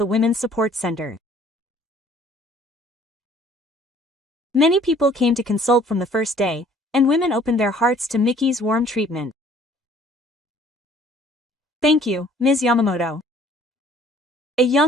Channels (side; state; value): both; normal; correlation 0.56